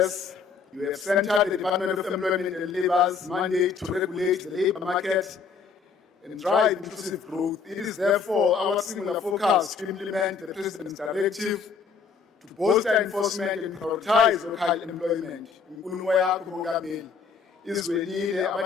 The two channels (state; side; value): quieter; right; 5.5 dB